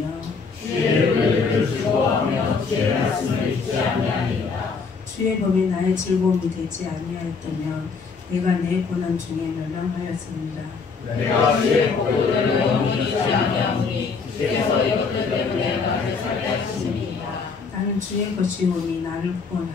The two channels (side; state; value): right; quieter; 5.0 dB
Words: 주의 의를 즐거워하며 주의 말씀을 잊지 아니하리이다. 주의 법이 나의 즐거움이 되지 아니하였다면 내가 내 고난 중에 멸망하였습니다. 내가 주의 법도를 영원히 잊지 아니하오니 주께서 이것들 때문에 나를 살게 하시니이다. 나는 주의 것이오니 나를